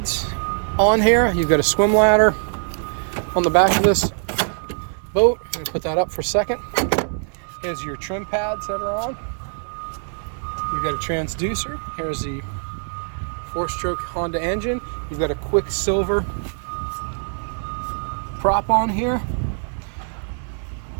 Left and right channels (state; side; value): silent; left; digital silence